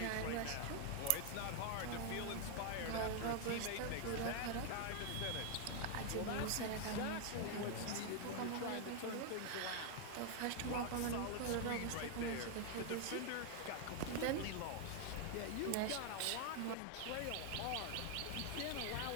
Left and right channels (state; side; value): different; both; correlation 0.00